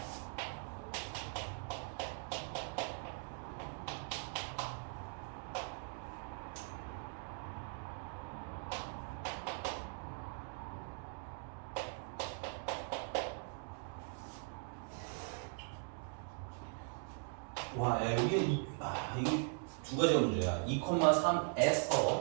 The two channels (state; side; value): silent; left; 51 dB below the other